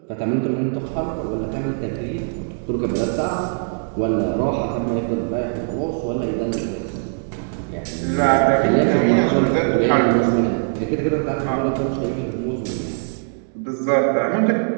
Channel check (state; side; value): silent; left; digital silence